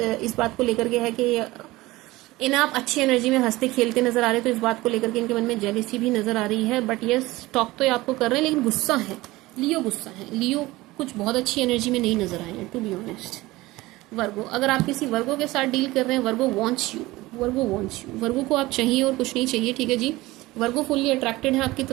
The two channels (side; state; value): left; quieter; 19.4 dB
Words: इस बात को लेकर के है कि इन्हें आप अच्छी एनर्जी में हंसते खेलते नजर आ रहे हैं, तो इस बात को लेकर के इनके मन में जेलेसी भी नजर आ रही है। बट ये स्टॉक तो ये आपको कर रहे हैं, लेकिन गुस्सा है, लियो गुस्सा है, लियो कुछ बहुत अच्छी एनर्जी में नहीं नजर आए हैं, टू बी ऑनेस्ट। वर्गो, अगर आप किसी वर्गो के साथ डील कर रहे हैं, Virgo wants you, Virgo wants you, Virgo को आप चाहिए और कुछ नहीं चाहिए, ठीक है जी। वर्गो फुल्ली अट्रैक्टेड है आपकी